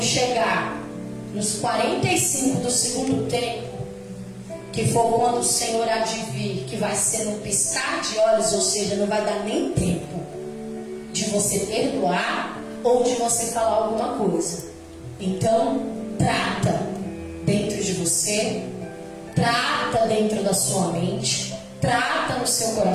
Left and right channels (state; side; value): identical; both; correlation 1.00